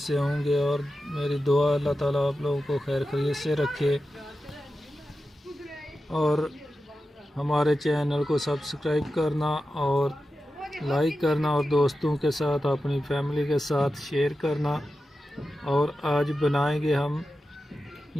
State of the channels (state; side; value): normal; both; correlation 0.92